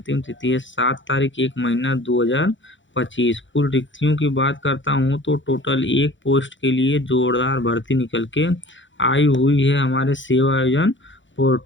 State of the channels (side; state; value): right; late; 0.55 ms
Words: तिथि है 7 तारीख 1 महीना 2025। कुल रिक्तियों की बात करता हूँ तो टोटल एक पोस्ट के लिए जोरदार भर्ती निकल के आई हुई है हमारे सेवा आयोजन